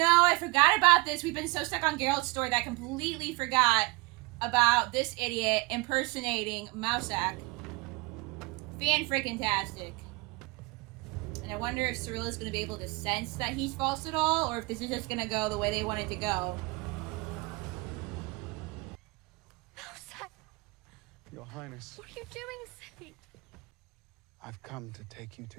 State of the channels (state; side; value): quieter; left; 24.9 dB